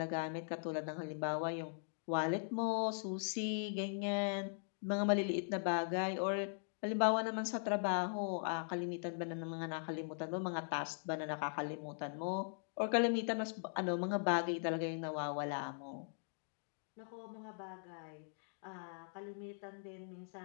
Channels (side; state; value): right; silent; digital silence